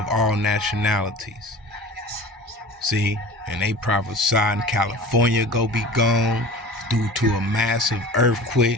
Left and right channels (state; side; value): normal; both; correlation 0.38